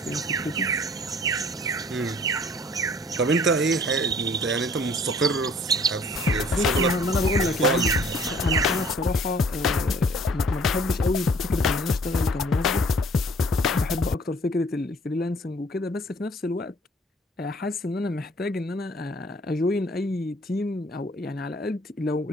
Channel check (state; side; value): normal; both; correlation 0.55